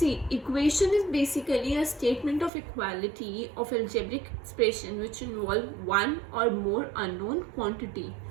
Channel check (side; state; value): left; drops out; at 2.5 s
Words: equation is basically a statement of equality of algebraic expression which involve one or more unknown quantity.